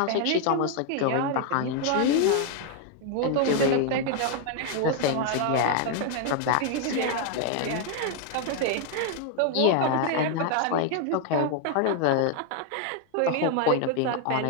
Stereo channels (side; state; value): both; different; correlation 0.00